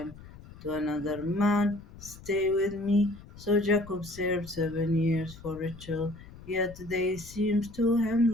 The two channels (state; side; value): noise; left; rumble, 18 dB below the sound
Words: to another man. Stay with me." So Jacob served 7 years for Rachel, yet they seemed to him